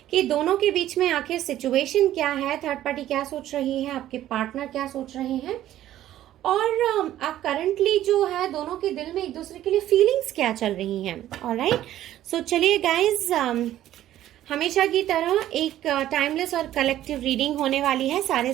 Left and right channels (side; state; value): left; quieter; 12.9 dB